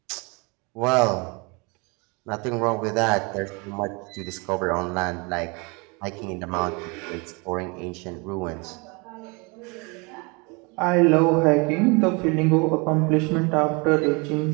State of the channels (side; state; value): left; quieter; 29.4 dB